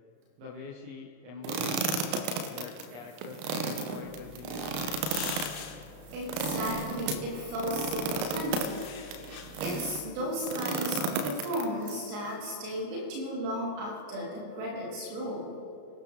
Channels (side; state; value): left; late; 33 ms